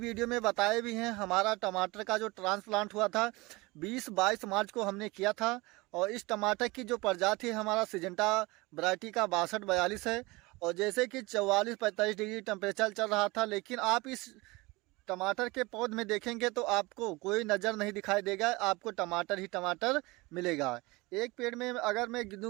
में बताए भी हैं, हमारा टमाटर का जो ट्रांसप्लांट हुआ था 20-22 मार्च को हमने किया था। और इस टमाटर की जो प्रजाति है हमारा सिजेंटा वैरायटी का 6242 है। और जैसे कि 44-45 डिग्री टेम्परेचर चल रहा था, लेकिन आप इस टमाटर के पौध में देखेंगे तो आपको कोई नज़र नहीं दिखाई देगा, आपको टमाटर ही टमाटर मिलेगा। एक पेड़ में अगर मैं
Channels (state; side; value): quieter; left; 23.1 dB